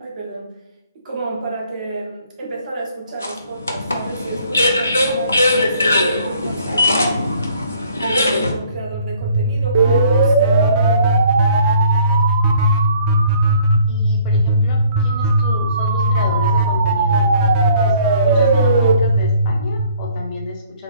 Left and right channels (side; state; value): both; inverted; correlation -0.59